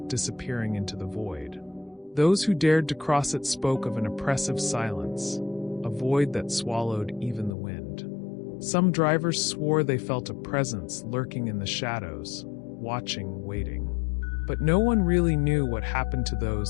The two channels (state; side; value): drops out; right; at 7.6 s